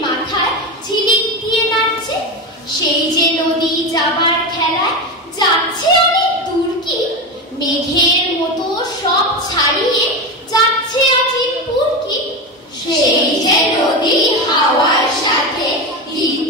মাথায় ঝিলিক দিয়ে নাচছে। সেই যে নদী যাবার খেলায় যাচ্ছে অনেক দূর কি, মেঘের মতো সব ছাড়িয়ে যাচ্ছে আজিমপুর কি। সেই যে নদী হাওয়ার সাথে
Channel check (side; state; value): both; normal; correlation 0.19